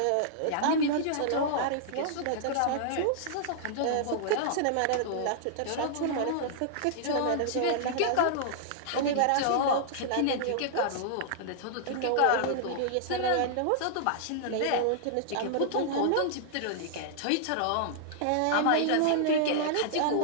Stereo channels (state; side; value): different; both; correlation -0.01